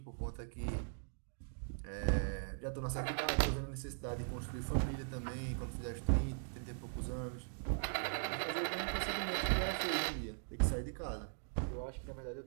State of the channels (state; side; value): silent; left; digital silence